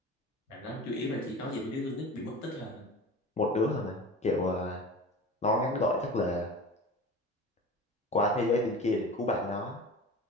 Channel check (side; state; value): both; normal; correlation 0.35